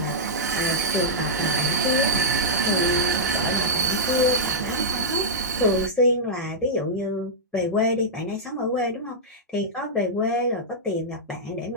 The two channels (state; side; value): normal; both; correlation -0.09